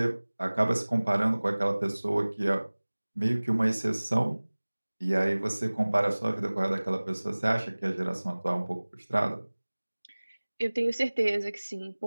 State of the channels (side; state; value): both; inverted; correlation -1.00